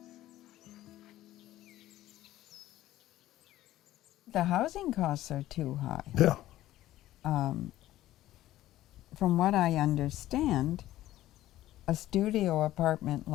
The housing costs are too high. Yeah. From what I understand, a studio apartment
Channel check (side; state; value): right; quieter; 14.6 dB